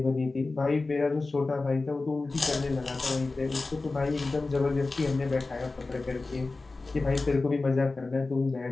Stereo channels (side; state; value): right; quieter; 3.5 dB